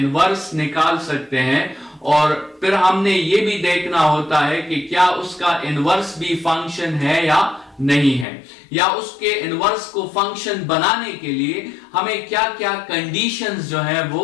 निकाल सकते हैं और फिर हमने ये भी देखना होता है कि क्या उसका इनवर्स भी फंक्शन है या नहीं है, या उसके इनवर्स को फंक्शन बनाने के लिए हमें क्या क्या कंडीशंस जो है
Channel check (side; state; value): right; drops out; at 8.2 s